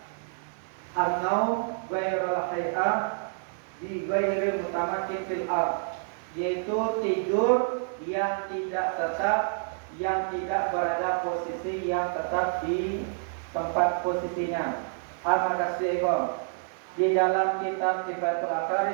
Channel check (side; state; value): left; silent; 59 dB below the other